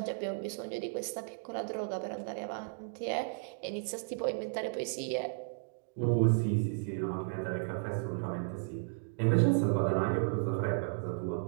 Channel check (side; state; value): left; silent; digital silence